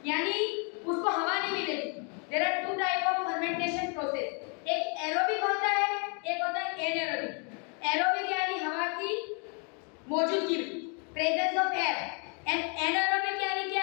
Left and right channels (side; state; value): right; quieter; 37.2 dB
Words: यानी उसको हवा नहीं मिलेगी। There are 2 type of fermentation process, एक एरोबिक होता है, एक होता है एनारोबिक। एरोबिक यानी हवा की मौजूदगी, presence of air, and anaerobic यानी